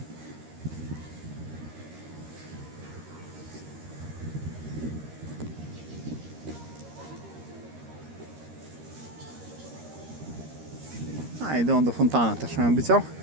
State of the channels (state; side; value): late; left; 13 ms